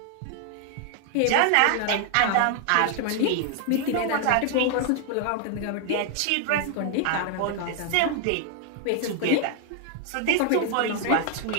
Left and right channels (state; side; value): different; both; correlation 0.00